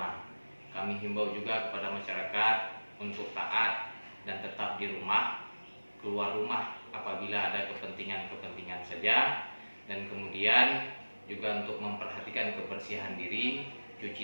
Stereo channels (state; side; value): inverted; both; correlation -1.00